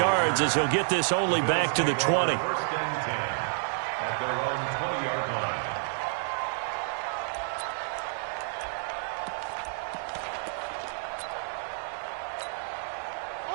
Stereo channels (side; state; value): left; silent; digital silence